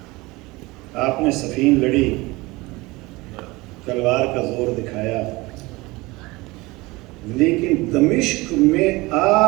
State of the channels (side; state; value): left; quieter; 22.2 dB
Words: آپ نے صفین لڑی, تلوار کا زور دکھایا, لیکن دمشق میں